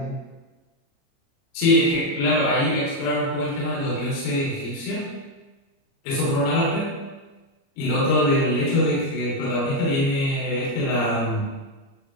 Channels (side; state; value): right; late; 29 ms